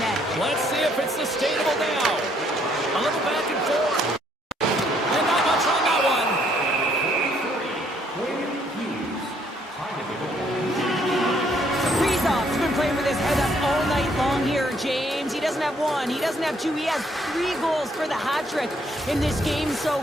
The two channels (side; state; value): both; normal; correlation 0.68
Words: Let's see if it's sustainable now. A little back and forth. And not much on that one. Kaprizov's been playing with his head up all night long here, James. He doesn't have one, he doesn't have two, he has 3 goals for the hat trick in this game so